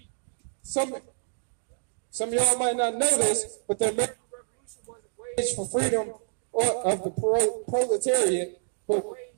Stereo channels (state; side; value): silent; left; digital silence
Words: Some of y'all might not know this, but the American Revolution wasn't waged for freedom of the proletariat, but